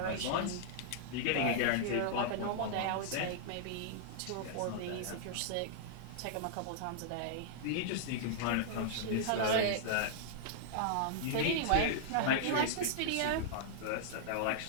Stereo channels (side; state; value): both; different; correlation -0.01